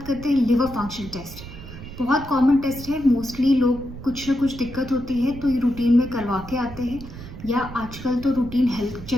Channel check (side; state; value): right; noise; rumble, 13 dB below the sound